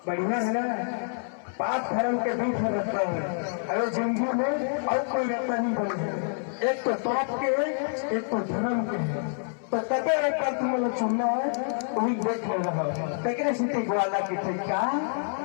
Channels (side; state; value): right; silent; 60 dB below the other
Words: सुना है ना, पाप धर्म के बीच में रखता है। अगर जिंदगी में और कोई रखता नहीं बने, एक तो पाप के है, एक तो धर्म के है। तो कते एक बार तुम लोग सुनना है, वही देख ले रहा है। तकरे सिटी ग्वाला की थे क्या